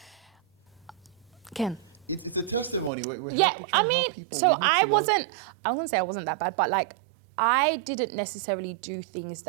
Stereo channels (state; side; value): drops out; left; at 2.9 s